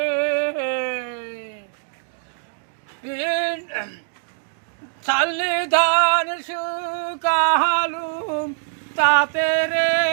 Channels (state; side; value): silent; left; digital silence